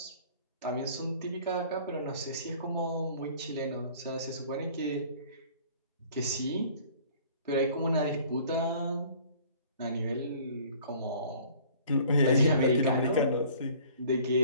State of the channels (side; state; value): both; inverted; correlation -0.52